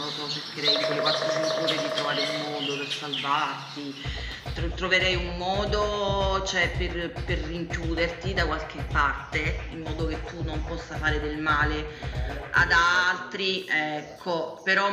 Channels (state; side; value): identical; both; correlation 1.00